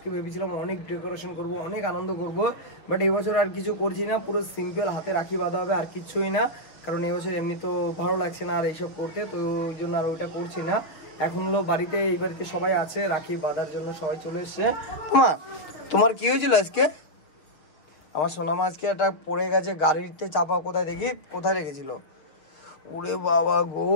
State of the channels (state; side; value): late; right; 6.4 ms